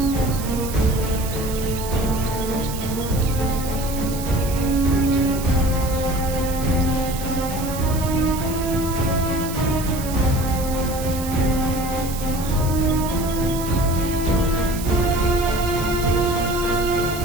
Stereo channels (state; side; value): noise; right; hiss, 11 dB below the sound